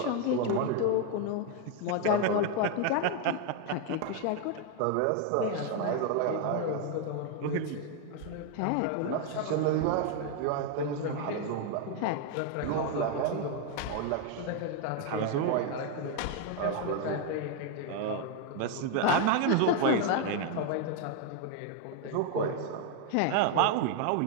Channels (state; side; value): different; both; correlation 0.01